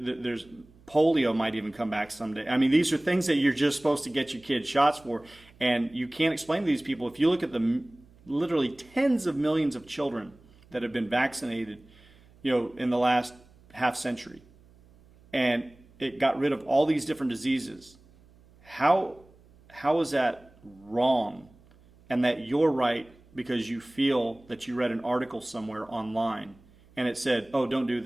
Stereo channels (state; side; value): noise; right; hum, 28 dB below the sound